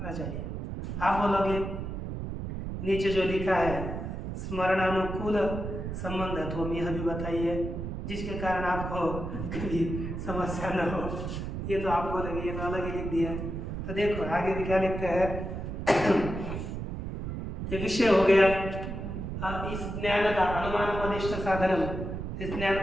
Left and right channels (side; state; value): right; noise; rumble, 5 dB below the sound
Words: चाहिए। आप बोलोगे नीचे जो लिखा है स्मरणानुकूल संबंधत्व, यह भी बताइए जिसके कारण आपको कभी समस्या न हो। ये तो आप बोलेंगे ये तो अलग ही लिख दिया। तो देखो आगे भी क्या लिखते हैं, ये विषय हो गया इस ज्ञान का अनुमान मदिष्ट साधनम। इस ज्ञान